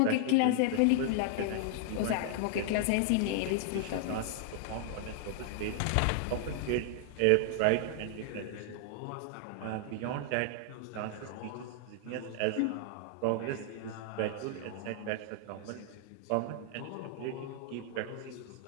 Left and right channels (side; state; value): both; different; correlation -0.01